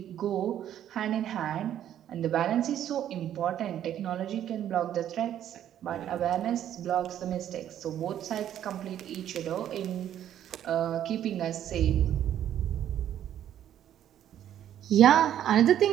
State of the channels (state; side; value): quieter; left; 10.8 dB